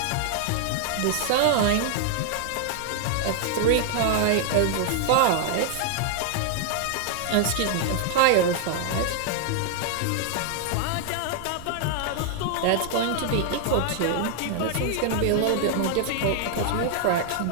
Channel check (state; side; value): different; both; correlation 0.00